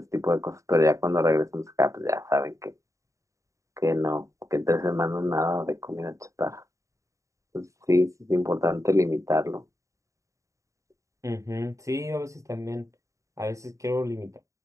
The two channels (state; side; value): late; left; 0.15 ms